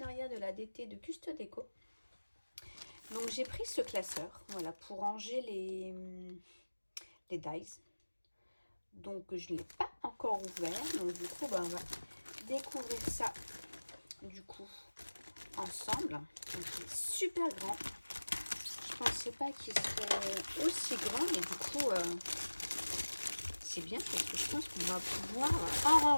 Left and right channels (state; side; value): inverted; both; correlation -1.00